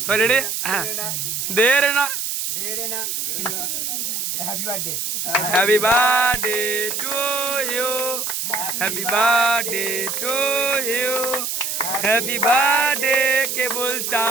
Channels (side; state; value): right; noise; hiss, 2 dB below the sound